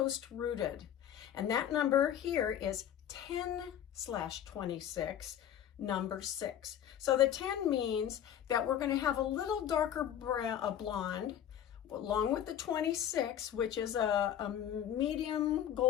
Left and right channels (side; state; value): right; quieter; 10.2 dB